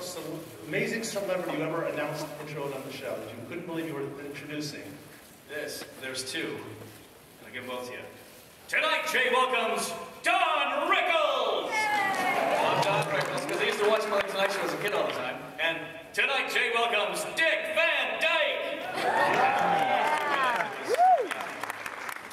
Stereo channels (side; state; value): both; identical; correlation 1.00